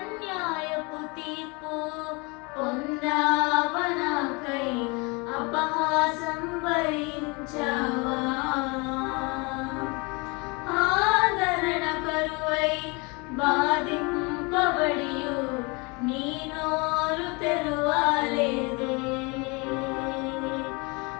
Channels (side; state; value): right; quieter; 28.7 dB